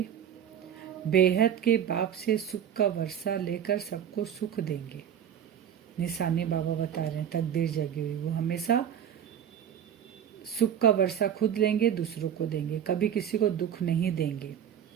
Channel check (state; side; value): quieter; left; 9.2 dB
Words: बेहद के बाप से सुख का वर्षा लेकर सबको सुख देंगे। निशानी बाबा बता रहे हैं, तकदीर जगी हुई वो हमेशा सुख का वर्षा खुद लेंगे, दूसरों को देंगे, कभी किसी को दुख नहीं देंगे।